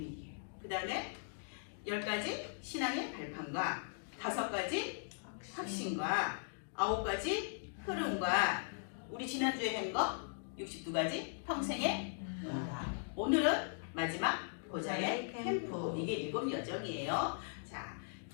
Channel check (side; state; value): right; silent; digital silence